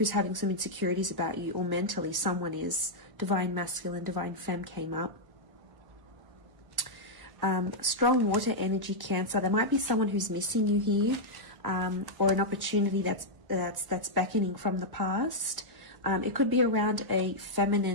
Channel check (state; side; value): late; left; 1.1 ms